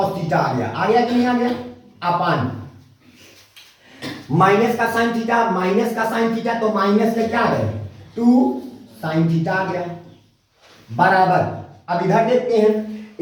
थीटा आ गया कि नहीं आ गया, अपान माइनस का साइन थीटा तो माइनस में क्या आ गया 2 साइन थीटा आ गया बराबर। अब इधर देखते हैं,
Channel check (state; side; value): identical; both; correlation 1.00